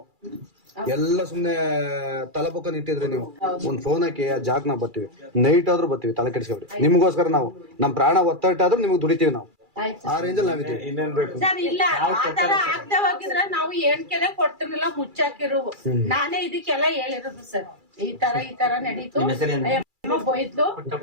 ಎಲ್ಲ ಸುಮ್ನೆ ತಲಪಕ್ಕ ನಿಂತಿದ್ರಿ ನೀವು. ಒಂದ್ ಫೋನ್ ಹಾಕಿ ಆ ಜಾಗ್ ನಾವು ಬರ್ತೀವಿ, ನೈಟ್ ಆದ್ರೂ ಬರ್ತೀವಿ, ತಲೆ ಕೆಡಿಸ್ಕೊಬಿಡಿ. ನಿಮ್ಗೋಸ್ಕರ ನಾವು ನಮ್ ಪ್ರಾಣ ಒತ್ತಟ್ಟಾದ್ರೂ ನಿಮ್ಗೆ ದುಡಿತೀವಿ ನಾವು. ಆ ರೇಂಜಲ್ಲಿ ನಾವಿದ್ದೀವಿ. ಇನ್ನೇನ್ ಬೇಕು? ಸರ್ ಇಲ್ಲ, ಆ ತರ ಆಗ್ತಾ ಹೋಗಿದ್ರೆ ನಾವು ಏಣ್ಕೆನೆ ಕೊಡ್ತಿರ್ಲಿಲ್ಲ, ಮುಚ್ಚಾಕಿರು. ನಾನೇ ಇದಕ್ಕೆಲ್ಲ ಹೇಳಿರೋದು ಸರ್, ಈ ತರ ನಡೀತು, ಹೋಯ್ತು,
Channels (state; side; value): late; left; 2.3 ms